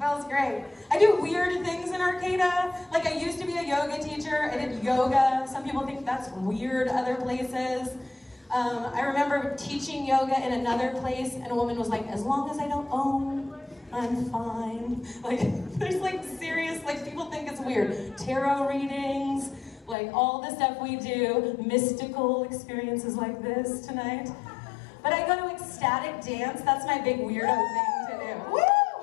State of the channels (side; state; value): right; drops out; at 20.0 s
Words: great. I do weird things in Arcata. I used to be a yoga teacher. I did yoga. Some people think that's weird other places. I remember teaching yoga in another place, and a woman was like, as long as I don't own, I'm fine. There's serious, people think it's weird. Tarot readings, all the stuff we do, mystical experiences like this tonight. But I go to ecstatic dance, that's my big weirdo thing to do. Woo!